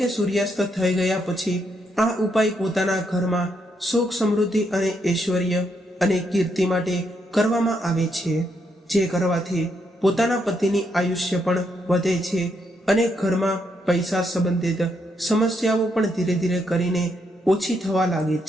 સૂર્યાસ્ત થઈ ગયા પછી આ ઉપાય પોતાના ઘરમાં સુખ, સમૃદ્ધિ અને ઐશ્વર્ય અને કીર્તિ માટે કરવામાં આવે છે, જે કરવાથી પોતાના પતિની આયુષ્ય પણ વધે છે અને ઘરમાં પૈસા સંબંધિત સમસ્યાઓ પણ ધીરે ધીરે કરીને ઓછી થવા લાગે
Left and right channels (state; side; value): normal; both; correlation 0.77